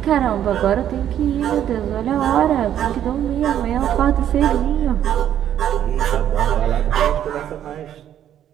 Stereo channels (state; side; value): quieter; left; 10.6 dB